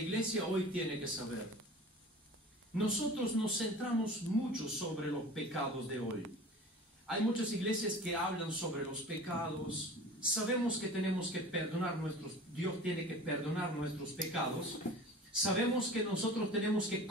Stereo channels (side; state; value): both; normal; correlation 0.39